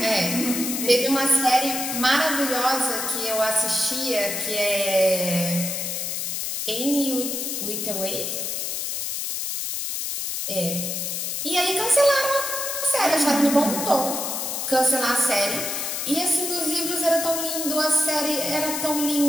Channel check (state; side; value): noise; left; hiss, 3 dB below the sound